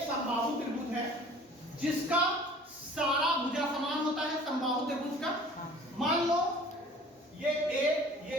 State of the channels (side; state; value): both; normal; correlation 0.48